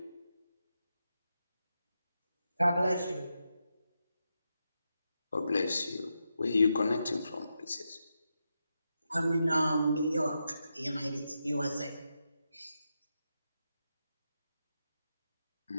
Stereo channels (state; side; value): inverted; both; correlation -0.86